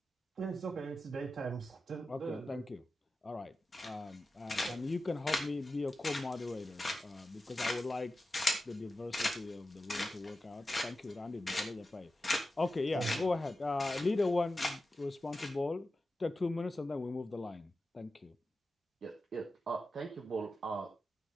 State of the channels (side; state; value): both; normal; correlation 0.92